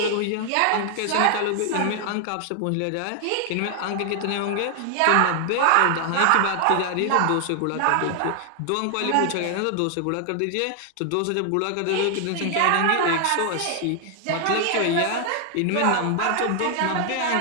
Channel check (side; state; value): both; different; correlation 0.00